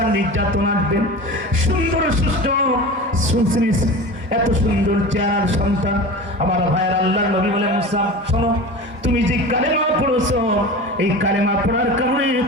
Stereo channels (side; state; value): both; normal; correlation 0.32